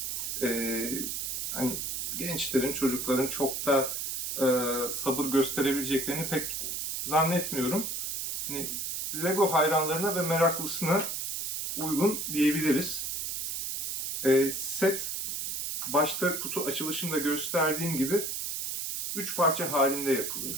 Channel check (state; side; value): noise; right; hiss, 3 dB below the sound